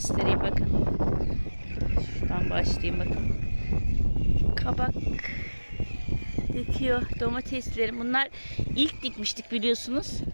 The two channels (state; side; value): inverted; both; correlation -1.00